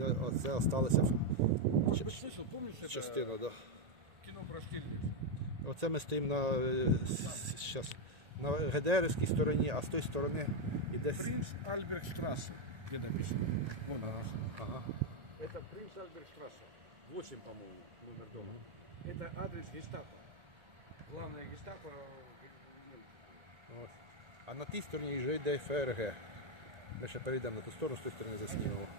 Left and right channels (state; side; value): late; left; 1.9 ms